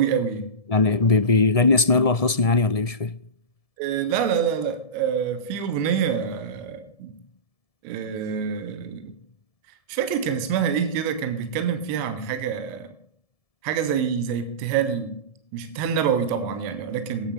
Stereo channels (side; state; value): right; late; 1.7 ms